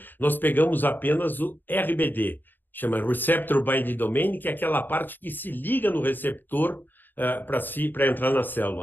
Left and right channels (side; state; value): right; late; 0.091 ms